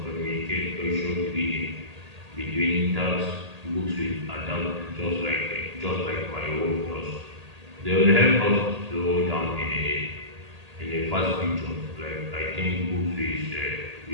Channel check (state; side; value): late; left; 1.8 ms